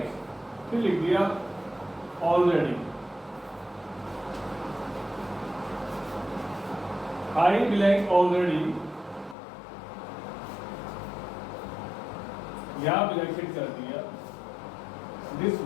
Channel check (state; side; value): drops out; right; at 9.3 s